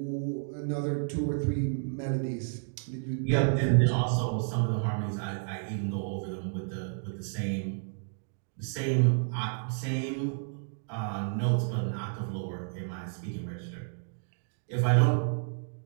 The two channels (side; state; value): left; silent; digital silence